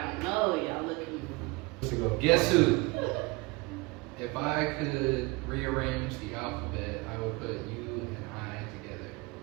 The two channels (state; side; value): quieter; left; 25.2 dB